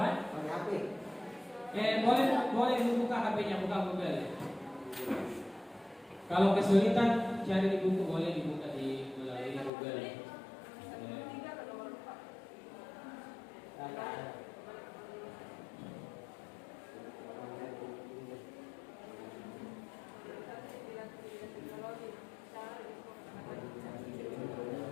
Pakai HP. Boleh dibuka HP-nya, buka Google. Kalau kesulitan cari di buku, boleh dibuka di melalui Google. Tiga ke nomor 4.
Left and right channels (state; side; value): drops out; right; at 9.7 s